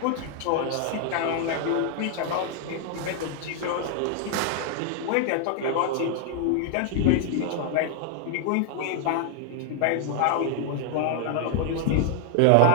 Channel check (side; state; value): both; different; correlation 0.00